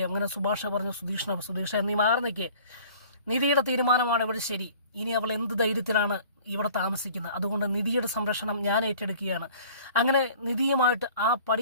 അങ്ങനെ സുഭാഷ് പറഞ്ഞു സുധീഷ നീ മാറി നിൽക്കേ, നിധിയുടെ തീരുമാനമാണ് ഇവിടെ ശരി. ഇനി അവൾ എന്ത് ധൈര്യത്തിലാണ് ഇവിടെ താമസിക്കുന്നത്, അതുകൊണ്ട് നിധിയുടെ സംരക്ഷണം ഞാൻ ഏറ്റെടുക്കുകയാണ്. അങ്ങനെ നിധിയുമായിട്ട് ആ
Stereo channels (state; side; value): inverted; both; correlation -0.49